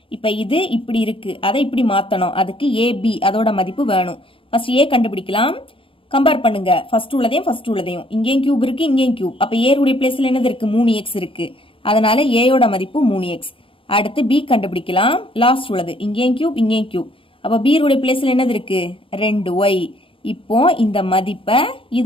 இப்ப இது இப்படி இருக்கு, அதை இப்படி மாத்தணும். அதுக்கு ab அதோட மதிப்பு வேணும். ஃபர்ஸ்ட் a கண்டுபிடிக்கலாம். கம்பேர் பண்ணுங்க, ஃபர்ஸ்ட் உள்ளதையும். இங்கேயும் கியூப் இருக்கு, இங்கேயும் கியூப், அப்ப a உடைய பிளேஸ்ல என்னது இருக்கு, 3x இருக்கு, அதனால a யோட மதிப்பு 3x. அடுத்து b கண்டுபிடிக்கலாம். லாஸ்ட் உள்ளது, இங்கேயும் கியூப், அப்ப b உடைய பிளேஸ்ல என்னது இருக்கு, 2y. இப்போ இந்த மதிப்பை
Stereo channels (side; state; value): right; late; 0.26 ms